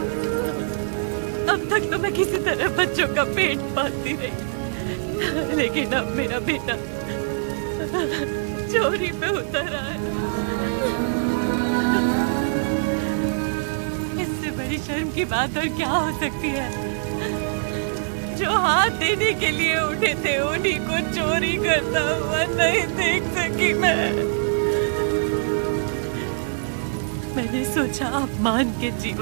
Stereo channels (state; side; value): silent; left; digital silence